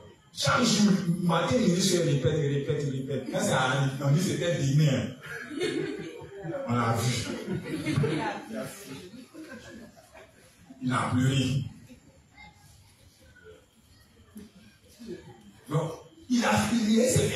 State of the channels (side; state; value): both; identical; correlation 1.00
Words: Chaque jour, matin, il répète. Quand ça arrive, on dit c'était demain. On l'a vu. Il a pleuré. Donc, il a filié ses